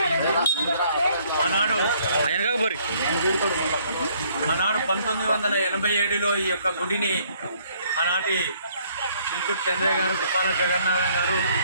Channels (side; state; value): both; inverted; correlation -0.64